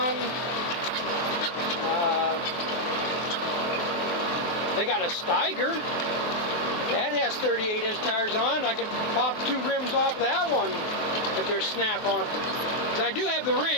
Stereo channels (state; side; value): late; right; 23 ms